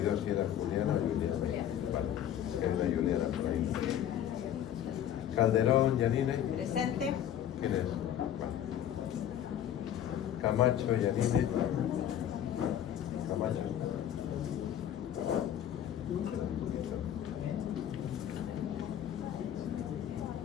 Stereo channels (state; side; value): quieter; right; 10.5 dB